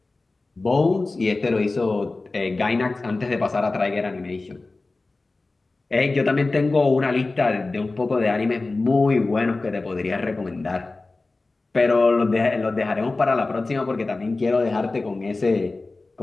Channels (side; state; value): right; quieter; 3.4 dB